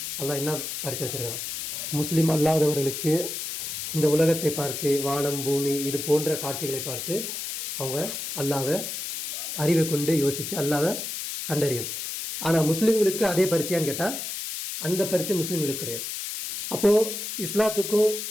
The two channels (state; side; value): noise; left; hiss, 5 dB below the sound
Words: அல்லாஹ் என்ன பரீட்சை வச்சிருக்கான்? முஸ்லீம் அல்லாதவர்களுக்கு இந்த உலகத்தை பார்த்து, வானம் பூமி இது போன்ற காட்சிகளை பார்த்து அவங்க அல்லாவை அறிவை கொண்டு யோசித்து அல்லாவை கண்டறியணும். ஆனால் முஸ்லீம்களுக்கு அதே பரீட்சையான்னு கேட்டால் அந்த பரீட்சை முஸ்லீம்களுக்கு கிடையாது. அப்போது இஸ்லாத்துக்கும்